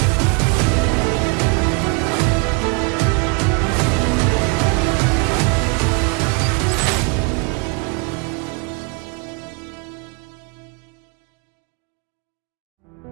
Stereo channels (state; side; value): quieter; left; 32.4 dB